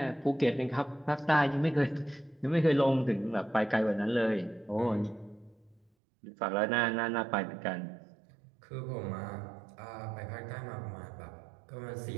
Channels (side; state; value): left; drops out; at 5.8 s